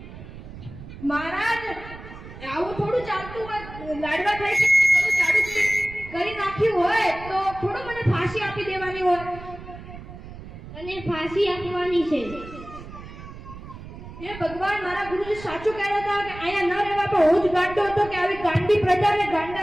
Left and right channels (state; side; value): noise; right; rumble, 14 dB below the sound